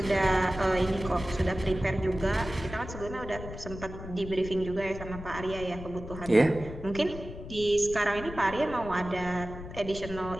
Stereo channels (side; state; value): left; noise; rumble, 11 dB below the sound